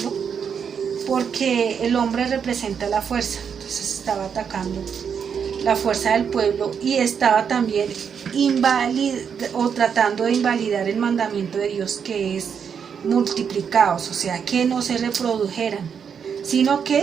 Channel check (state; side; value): quieter; left; 7.1 dB